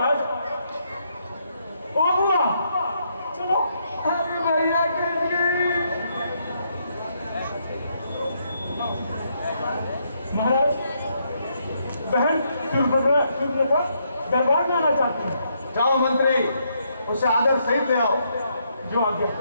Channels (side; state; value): both; inverted; correlation -0.75